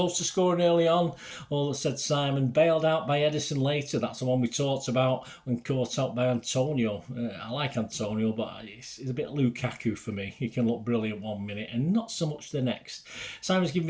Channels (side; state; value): both; identical; correlation 1.00